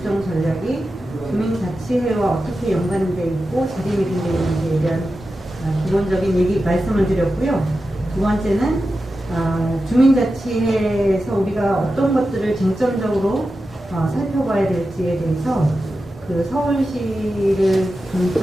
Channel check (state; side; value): normal; both; correlation 0.92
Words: 국정전략이 주민자치회와 어떻게 연관되어 있고 자리매김되어 있는지에 대한 기본적인 얘기 말씀을 드렸고요. 두 번째는 주민자치회에서 우리가 어떤 것들을 쟁점적으로 살펴봐야 될지에 대해서 서울시를